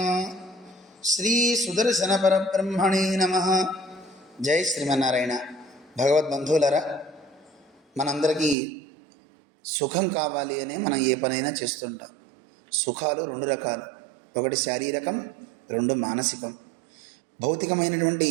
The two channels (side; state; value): left; drops out; at 8.6 s